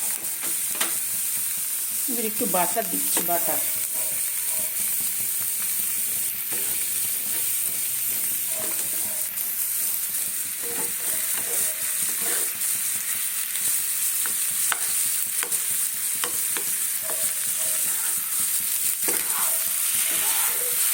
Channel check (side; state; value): both; identical; correlation 1.00